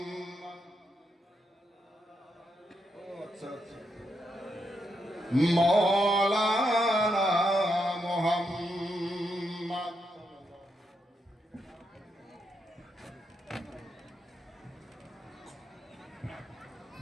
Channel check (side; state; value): both; normal; correlation 0.82